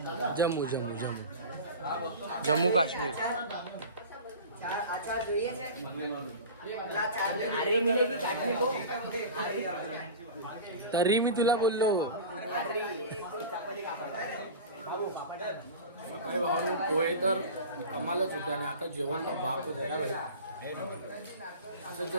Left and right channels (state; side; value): inverted; both; correlation -0.33